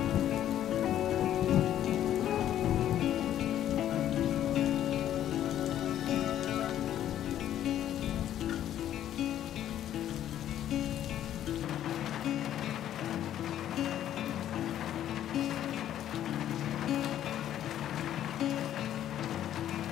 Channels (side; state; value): right; quieter; 11.4 dB